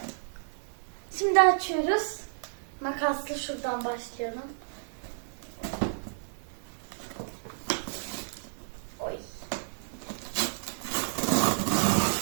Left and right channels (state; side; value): silent; left; digital silence